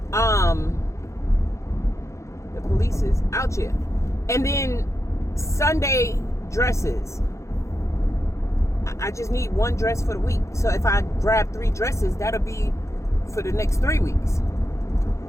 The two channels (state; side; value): late; right; 0.14 ms